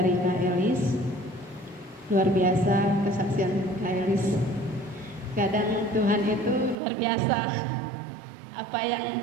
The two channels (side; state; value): left; drops out; at 6.8 s